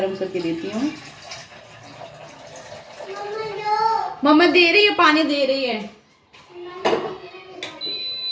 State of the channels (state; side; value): identical; both; correlation 1.00